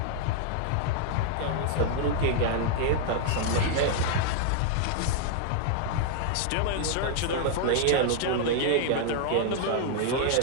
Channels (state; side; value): different; both; correlation -0.01